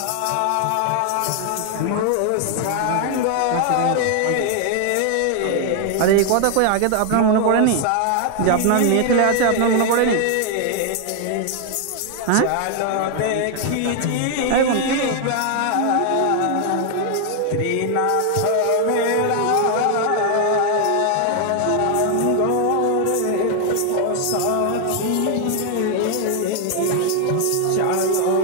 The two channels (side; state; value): both; different; correlation 0.00